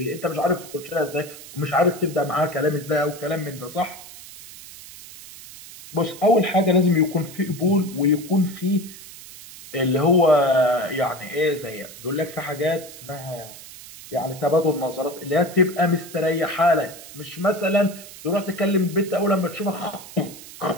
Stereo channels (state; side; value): noise; right; hiss, 16 dB below the sound